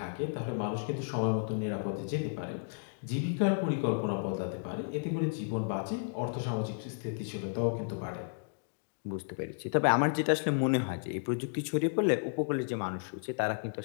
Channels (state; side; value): silent; right; digital silence